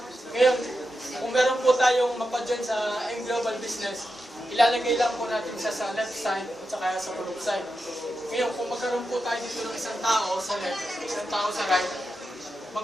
Ngayon, kung meron po tayong mapajoin sa global business, ilalagay lang po natin siya sa left side at saka sa group side. Ngayon, kung magkaroon po tayo dito ng isang tao sa left, isang tao sa right,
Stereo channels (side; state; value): both; normal; correlation 0.89